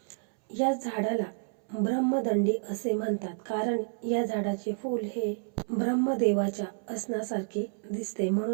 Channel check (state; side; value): silent; left; 58 dB below the other